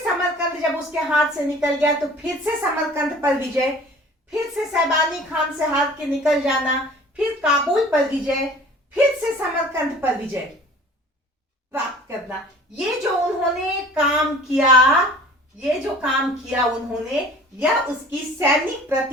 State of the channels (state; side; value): normal; both; correlation 0.47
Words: समरकंद जब उसके हाथ से निकल गया तो फिर से समरकंद पर विजय, फिर से शैबानी खान से हार के निकल जाना, फिर काबुल पर विजय, फिर से समरकंद पर विजय प्राप्त करना। ये जो उन्होंने काम किया उन्होंने, यह उसकी सैनिक